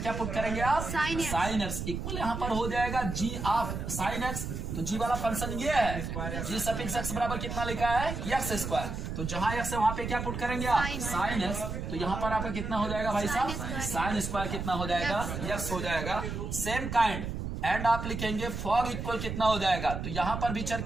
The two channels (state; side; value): noise; right; rumble, 5 dB below the sound